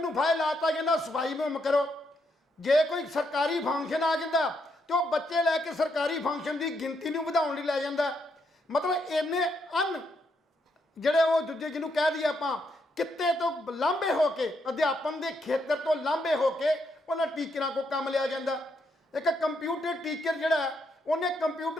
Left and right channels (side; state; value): both; normal; correlation 0.77